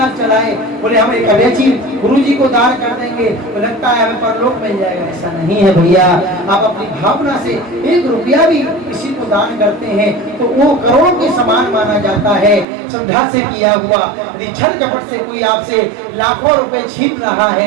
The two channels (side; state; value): left; drops out; at 12.7 s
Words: चलाए, बोले हम एक अवैची गुरु जी को दान कर देंगे तो लगता है हमें परलोक मिल जाएगा। ऐसा नहीं है भैया। आप अपनी भावना से 1 रुपया भी किसी को दान करते हैं तो वो करोड़ों के समान माना जाता है, श्रद्धा से किया हुआ। यदि छल कपट से कोई आपसे लाखों रुपए छीन रहा